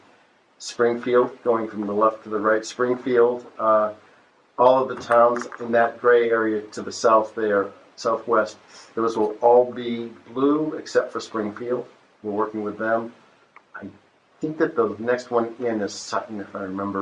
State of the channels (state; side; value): identical; both; correlation 1.00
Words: Springfield, going from the left to the right, Springfield, all of the towns in that gray area to the south there, southwest, those will all be blue except for Springfield. We're working with them. I think that the next one in is Sutton, if I